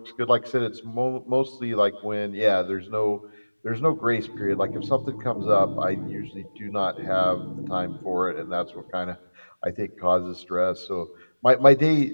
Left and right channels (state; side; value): inverted; both; correlation -1.00